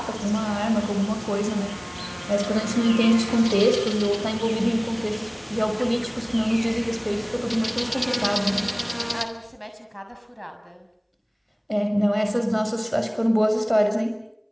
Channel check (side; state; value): both; identical; correlation 1.00